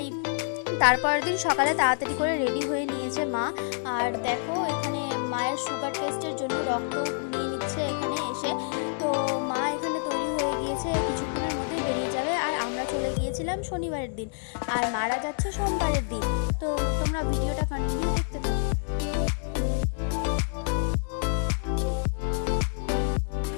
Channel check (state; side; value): silent; right; digital silence